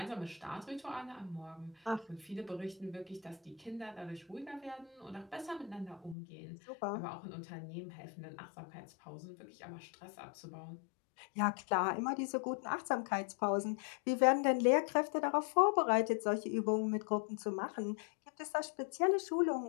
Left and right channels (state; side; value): drops out; right; at 6.2 s